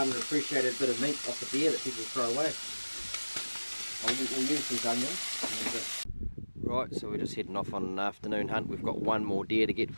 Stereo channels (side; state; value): both; inverted; correlation -1.00